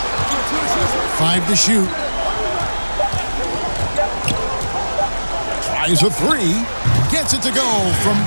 5 to shoot. Tries a 3. Gets it to go from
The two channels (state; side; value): inverted; both; correlation -1.00